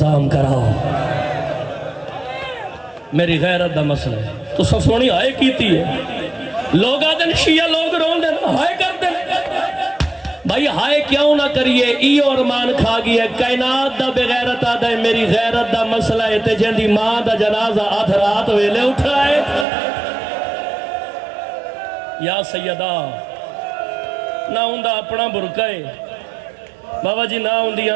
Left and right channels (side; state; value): left; drops out; at 19.7 s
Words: کراؤ میری غیرت دا مسئلہ ہے تو سب سونی ہائے کیتی ہے لوگ آدھن شیعہ لوگ رون دیں ہائے کر دیں بھائی ہائے کیوں نہ کریے ایو ارمان کھا گیا کائنات دا بغیرت آدھا ہے میری غیرت دا مسئلہ ہے تے جن دی ماں دا جنازہ آدھ رات ویلے اٹھائے یا سیدہ نہ ہوندہ اپنا برکے بابا جی نہ ہوندیاں